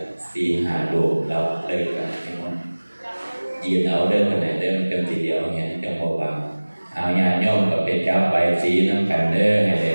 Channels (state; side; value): inverted; both; correlation -1.00